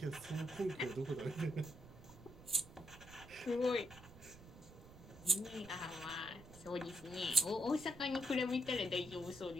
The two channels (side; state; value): right; noise; rumble, 18 dB below the sound